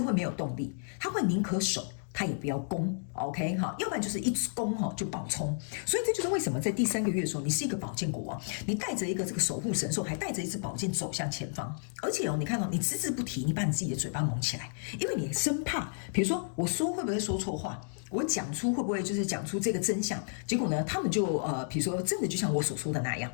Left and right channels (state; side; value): silent; right; digital silence